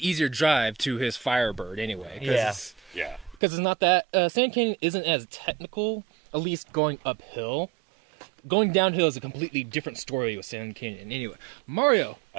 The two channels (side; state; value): left; drops out; at 3.4 s